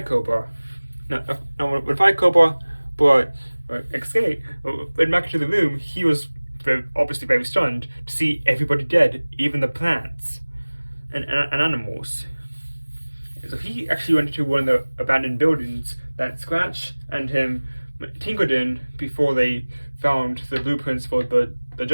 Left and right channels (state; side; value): inverted; both; correlation -1.00